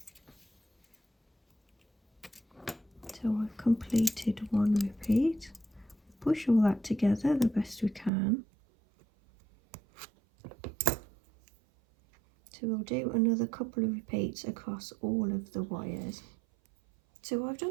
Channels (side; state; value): left; drops out; at 8.1 s